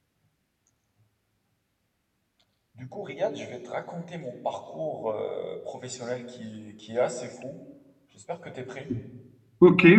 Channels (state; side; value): identical; both; correlation 1.00